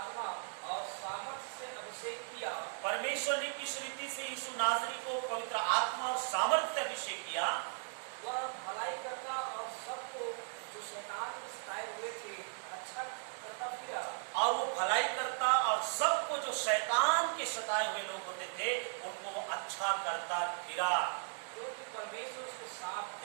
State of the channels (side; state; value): left; silent; 53 dB below the other